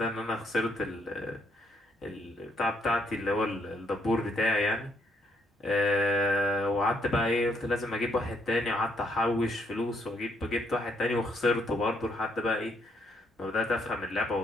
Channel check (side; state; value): both; normal; correlation 0.72